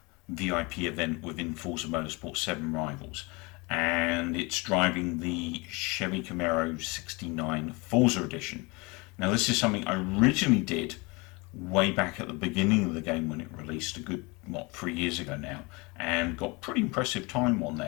VIP event within Forza Motorsport 7 Rivals. And it's driving the Chevy Camaro 69 Forza Edition. Now this is something I originally did way back at the beginning of the game when it released a good, 3 years ago now, and got pretty impressive time on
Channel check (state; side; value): quieter; right; 26.8 dB